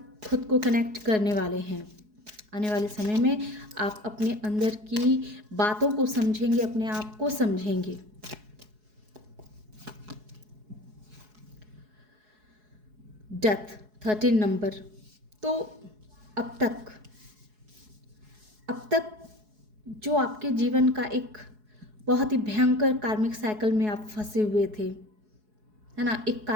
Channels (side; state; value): left; late; 4.7 ms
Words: खुद को कनेक्ट करने वाले हैं। आने वाले समय में आप अपने अंदर की बातों को समझेंगे, अपने आप को समझेंगे। Death 13 number. तो अब तक जो आपके जीवन का एक बहुत ही भयंकर कार्मिक साइकिल में आप फंसे हुए थे, है ना, एक